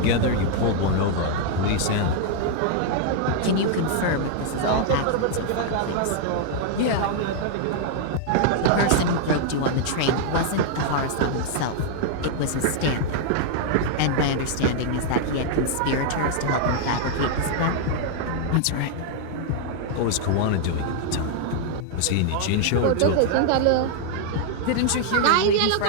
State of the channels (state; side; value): different; both; correlation -0.01